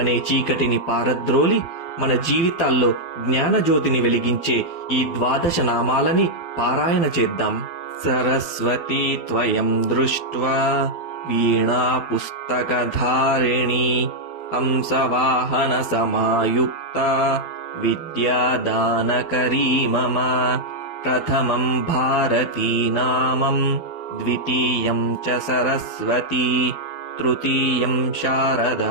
చీకటిని పారద్రోలి మన జీవితాల్లో జ్ఞానజ్యోతిని వెలిగించే ఈ 12 నామాలని పారాయణ చేద్దాం. సరస్వతీ త్వయం దృష్ట్వా వీణా పుస్తకధారిణీ హంసవాహన సమాయుక్త విద్యాదానకరీ మమ. ప్రథమం భారతీ నామం ద్వితీయం చ సరస్వతీ తృతీయం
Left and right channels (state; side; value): late; right; 12 ms